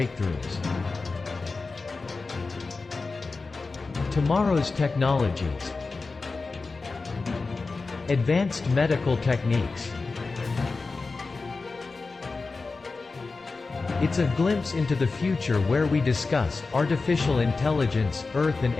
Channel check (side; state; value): right; quieter; 4.0 dB